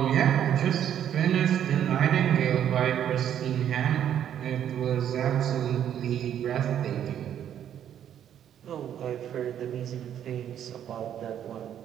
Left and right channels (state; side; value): quieter; left; 9.9 dB